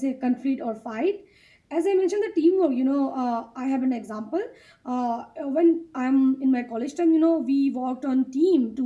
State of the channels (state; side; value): identical; both; correlation 1.00